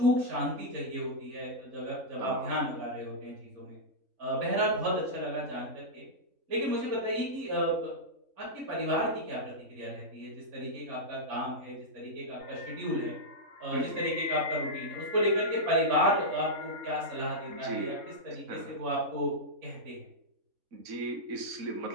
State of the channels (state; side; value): late; left; 3.5 ms